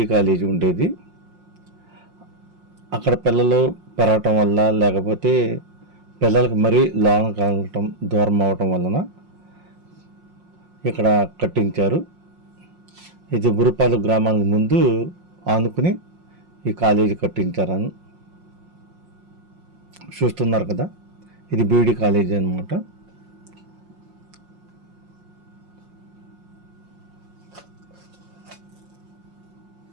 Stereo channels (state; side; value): late; left; 5.6 ms